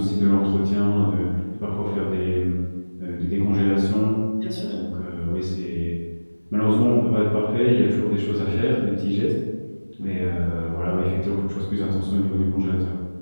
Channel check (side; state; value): both; inverted; correlation -1.00